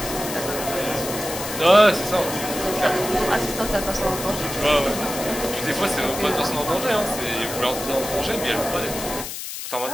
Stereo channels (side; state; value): left; noise; hiss, 7 dB below the sound